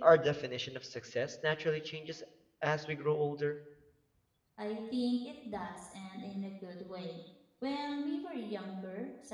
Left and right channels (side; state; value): both; identical; correlation 1.00